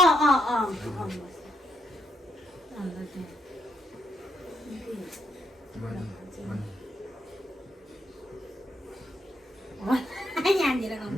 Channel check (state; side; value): normal; both; correlation 0.77